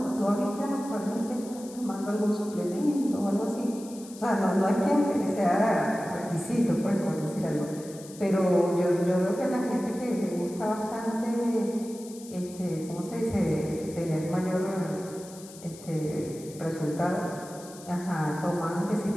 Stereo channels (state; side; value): noise; left; hiss, 18 dB below the sound